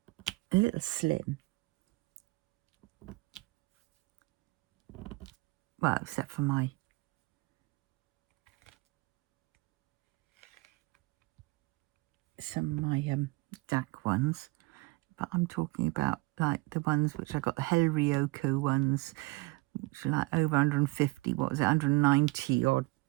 little slim. Well, except for some of my DAC ones, but I'm talking about like the ones which I got, the Ryoko ones, which are like over 150, what was it, 190 odd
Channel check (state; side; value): quieter; left; 24.2 dB